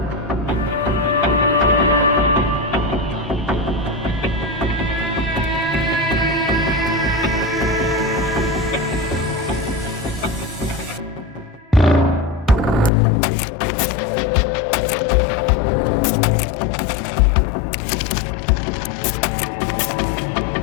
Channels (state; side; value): drops out; right; at 12.9 s